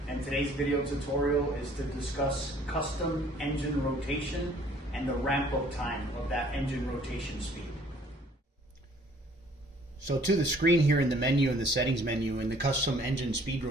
and today's video tutorial is to discuss custom engine rotation and the ramp-up time of that engine rotation speed. So to the screen here in the menu, in the settings menu, in the custom engine speed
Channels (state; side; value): normal; both; correlation 0.57